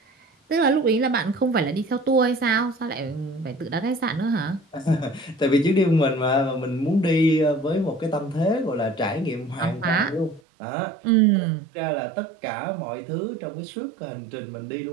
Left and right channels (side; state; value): left; drops out; at 10.4 s